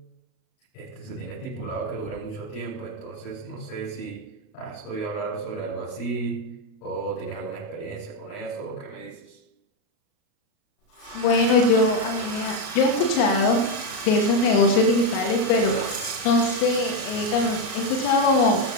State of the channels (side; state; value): right; late; 38 ms